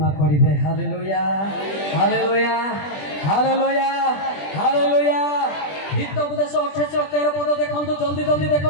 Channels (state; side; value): late; right; 20 ms